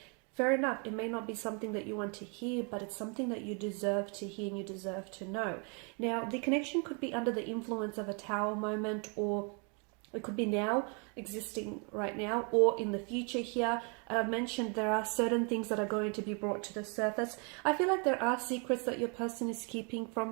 fair enough, it may not be something that you want to hear, but it's something that you deserve to hear and you deserve to know. Now, the connection could be under the influence of a Tower moment, or it could be now, existing right now, or in the future here. I've mentioned there are certain things that are going to be brought to the surface. I feel like there are secrets that your person is keeping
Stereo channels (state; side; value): quieter; left; 35.7 dB